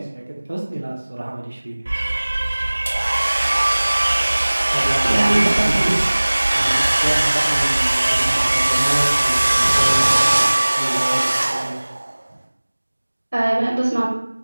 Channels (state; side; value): inverted; both; correlation -1.00